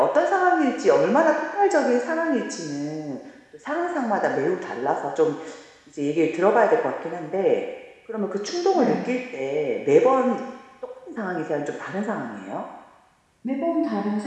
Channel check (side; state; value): both; identical; correlation 1.00